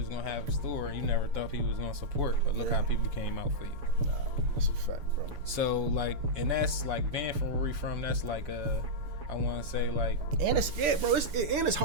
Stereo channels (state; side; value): late; left; 7.0 ms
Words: gonna have a store, and you never thought people was gonna support. But look how people came out for you. Nah, that's a fact, bro. So like, and that's like being from where we from. That's like I want to say, like, and it's bro. It's